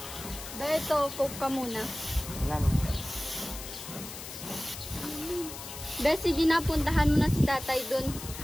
Beto, coke ka muna. Wala naman. Be, sige na, puntahan mo na si tatay dun.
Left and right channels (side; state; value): left; noise; hiss, 11 dB below the sound